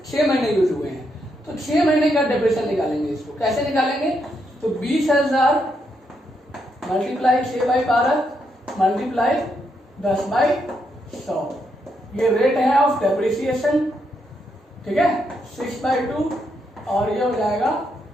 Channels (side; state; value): both; normal; correlation 0.79